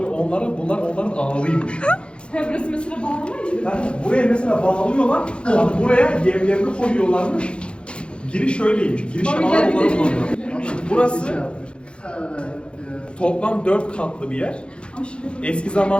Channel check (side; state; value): right; late; 0.057 ms